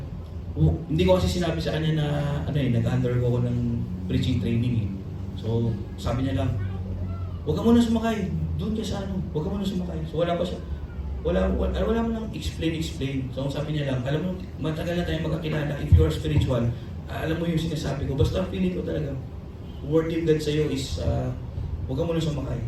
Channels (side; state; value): both; identical; correlation 1.00